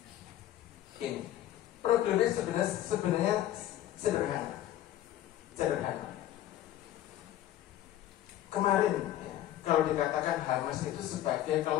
Ini problemnya sebenarnya sederhana. Kemarin, ya, kalau dikatakan Hamas itu sebagai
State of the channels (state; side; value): quieter; right; 12.9 dB